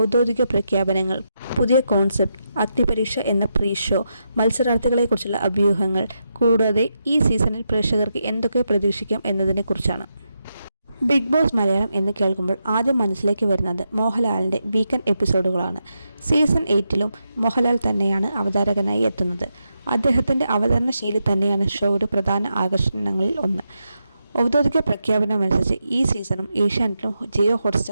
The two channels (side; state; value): both; inverted; correlation -0.85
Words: പ്രഖ്യാപനങ്ങൾ, പുതിയ കോൺസെപ്റ്റ്, അഗ്നിപരീക്ഷ എന്ന പ്രീ ഷോ, മത്സരാർത്ഥികളെക്കുറിച്ചുള്ള അഭ്യൂഹങ്ങൾ, കൂടാതെ ഈ സീസണിൽ പ്രേക്ഷകർക്ക് എന്തൊക്കെ പ്രതീക്ഷിക്കാം എന്നതിനെക്കുറിച്ചാണ്. ബിഗ് ബോസ് മലയാളം എന്ന് കേൾക്കുമ്പോൾ ആദ്യം മനസ്സിലേക്ക് വരുന്നത് മോഹൻലാലിൻ്റെ വീക്കെൻഡ് എപ്പിസോഡുകളാണ്. സീസൺ 8ലും മോഹൻലാൽ തന്നെയാണ് അവതാരകനായി എത്തുന്നത്. അദ്ദേഹത്തിൻ്റെ അവതരണ ശൈലി തന്നെയാണ് ഷോയുടെ പ്രധാന ആകർഷണങ്ങളിൽ ഒന്ന്. ഔദ്യോഗിക പ്രഖ്യാപനമനുസരിച്ച് ഈ സീസണും ഏഷ്യാനെറ്റിലും ജിയോ